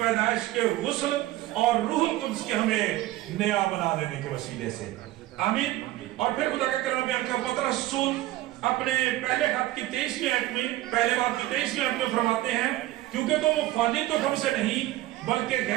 کے غسل اور روح القدس کے ہمیں نیا بنا دینے کے وسیلے سے، آمین۔ اور پھر خدا کا کلام بیان کر پترس رسول اپنے پہلے خط کی 23ویں آیت میں، پہلے باب کی 23ویں آیت میں فرماتے ہیں، کیونکہ تم فانی تو ہم سے نہیں بلکہ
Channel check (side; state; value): left; quieter; 16.0 dB